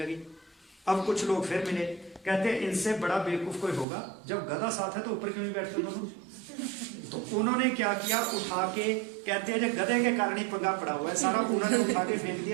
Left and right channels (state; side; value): drops out; left; at 3.9 s